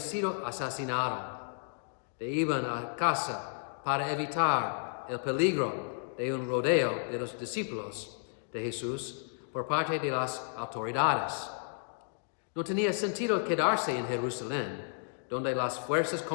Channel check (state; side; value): silent; right; digital silence